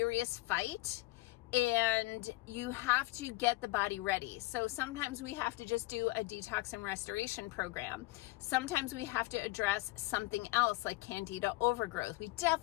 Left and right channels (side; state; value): right; quieter; 20.7 dB